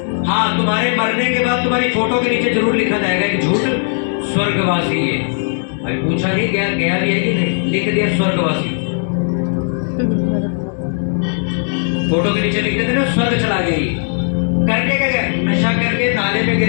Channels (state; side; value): silent; right; 68 dB below the other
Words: हाँ, तुम्हारे मरने के बाद तुम्हारी फोटो के नीचे जरूर लिखा जाएगा कि झूठ स्वर्गवासी है। अभी पूछा नहीं गया भी है कि नहीं, लिख दिया स्वर्गवासी। फोटो के नीचे लिख देते ना स्वर्ग चला गई। करके क्या गया? नशा करके नाले में